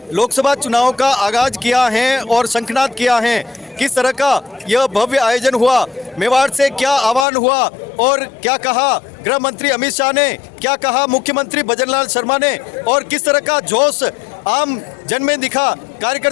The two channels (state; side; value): drops out; right; at 7.2 s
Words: लोकसभा चुनाव का आगाज किया है और शंखनाद किया है। किस तरह का यह भव्य आयोजन हुआ, मेवाड़ से क्या आह्वान हुआ और क्या कहा गृह मंत्री अमित शाह ने, क्या कहा मुख्यमंत्री भजनलाल शर्मा ने और किस तरह का जोश आम जन में दिखा,